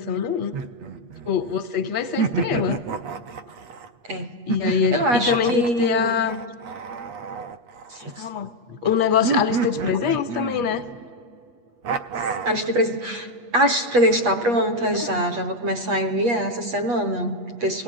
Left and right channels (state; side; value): late; left; 8.4 ms